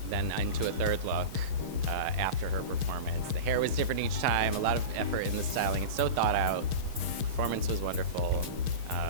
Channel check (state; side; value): late; left; 6.5 ms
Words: then into a third look after her performance. The hair was different each time, a lot of effort in the styling. It's so thought out. Performance was wonderful.